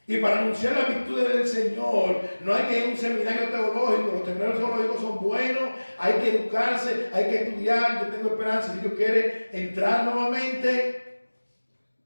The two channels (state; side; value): inverted; both; correlation -1.00